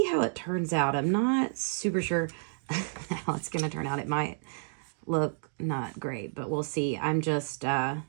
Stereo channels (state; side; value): silent; left; digital silence